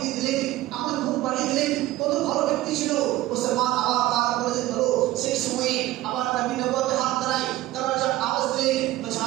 দিয়ে দিলেন, আমার ঘুম পাড়িয়ে দিলেন, কত ভালো ব্যক্তি ছিল। মুসলমান আবার তার করে হলো সেই সময়ে আবার নবী নবুয়তে হাত ধরাই, দরজা আওয়াজ দিলেন, বলছে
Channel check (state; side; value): quieter; left; 16.2 dB